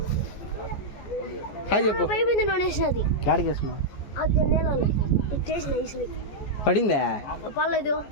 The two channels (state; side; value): late; right; 14 ms